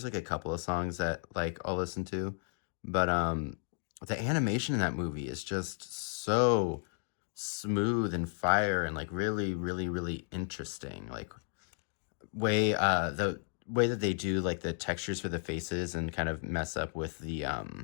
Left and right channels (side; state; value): right; silent; 55 dB below the other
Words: like a couple of songs that like I'll listen to, but the animation in that movie is just so smooth and fire and like really, really, really interesting. Like the way that they do like the textures for the faces and kind of mess up with the